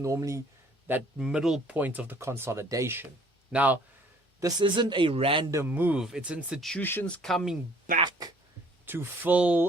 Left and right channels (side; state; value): both; normal; correlation 0.57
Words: that middle point of the consolidation. Now, this isn't a random move. It's institutions coming back to